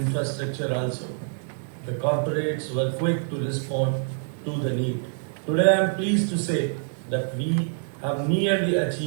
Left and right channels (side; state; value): left; silent; digital silence